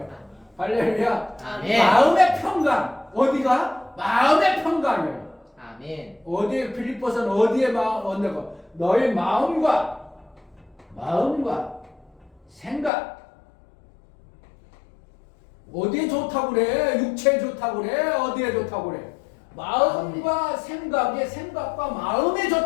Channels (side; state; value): right; drops out; at 12.9 s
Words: 할렐루야. 아멘. 마음의 평강. 어디가? 마음의 평강이에요. 아멘. 어디에 빌립보서는 어디에 얻는 너의 마음과 생각 어디에 좋다고 그래? 육체에 좋다고 그래? 어디에 좋다고 그래? 마음과 생각과 마음에